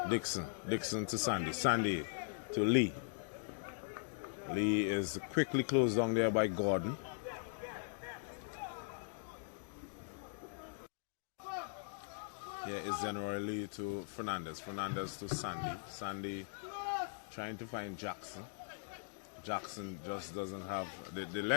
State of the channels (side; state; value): right; silent; digital silence